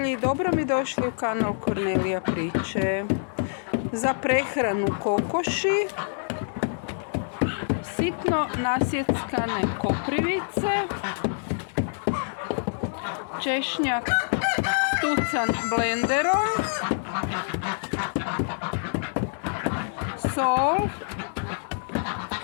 dobro mi došli u kanal Kornelija priče. Za prehranu kokoši, sitno nasjeckane koprivice, češnjak stucan blenderom, sol,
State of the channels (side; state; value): right; silent; digital silence